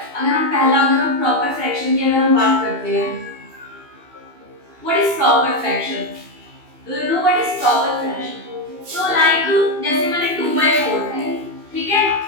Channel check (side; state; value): left; late; 2.7 ms